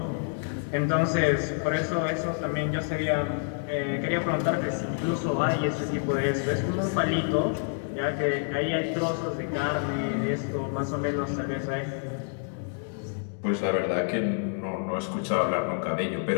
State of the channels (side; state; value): right; silent; 59 dB below the other